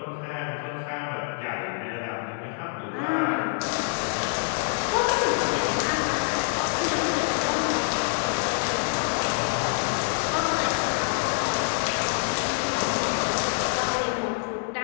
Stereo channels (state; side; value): silent; right; 61 dB below the other